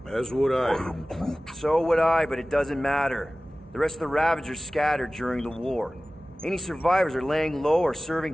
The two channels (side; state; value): both; normal; correlation 0.97